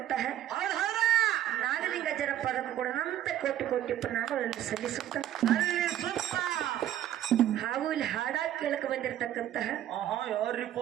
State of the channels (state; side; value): quieter; left; 12.0 dB